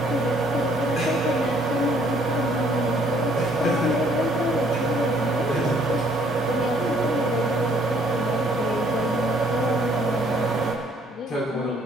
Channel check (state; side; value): normal; both; correlation 0.63